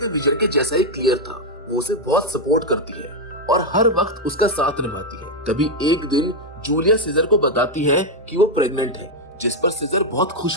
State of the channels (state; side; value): normal; both; correlation 0.02